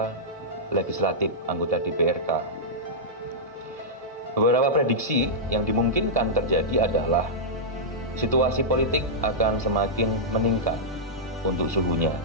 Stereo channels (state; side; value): normal; both; correlation -0.11